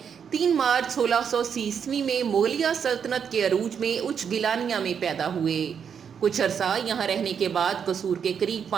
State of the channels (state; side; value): quieter; left; 7.3 dB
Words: 3 مارچ 1630 میں مغلیہ سلطنت کے عروج میں اچ گیلانیہ میں پیدا ہوئے۔ کچھ عرصہ یہاں رہنے کے بعد قصور کے قریب